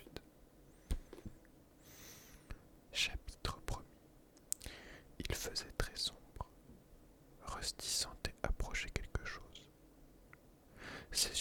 Chapitre 1er. Il faisait très sombre. Rusty sentait approcher quelque chose.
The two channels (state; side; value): identical; both; correlation 1.00